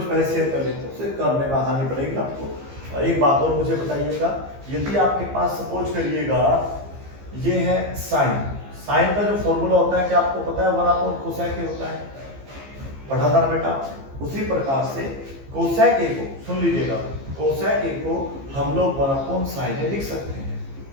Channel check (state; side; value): late; left; 15 ms